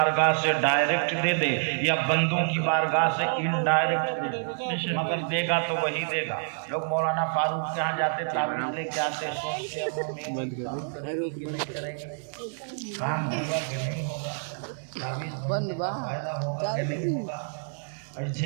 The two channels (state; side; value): silent; left; digital silence